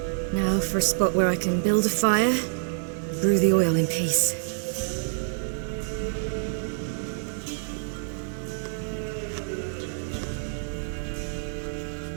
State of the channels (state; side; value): silent; left; digital silence